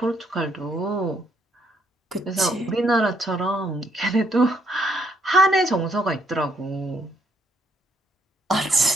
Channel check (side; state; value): both; normal; correlation 0.71